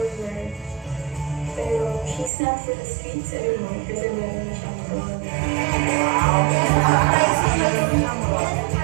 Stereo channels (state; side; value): drops out; left; at 2.3 s